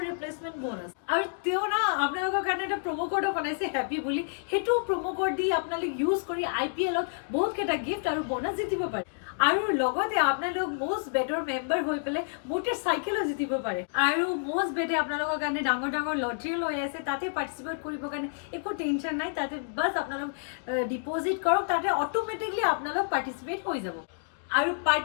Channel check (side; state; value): right; silent; digital silence